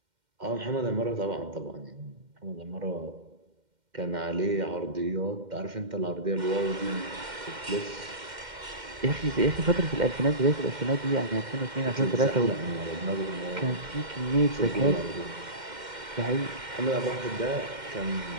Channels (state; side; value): late; left; 2.1 ms